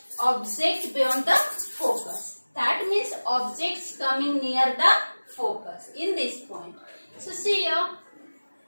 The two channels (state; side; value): inverted; both; correlation -1.00